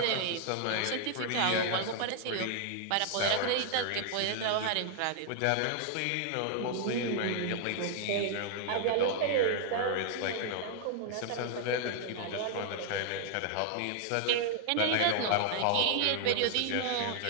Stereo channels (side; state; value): both; different; correlation 0.00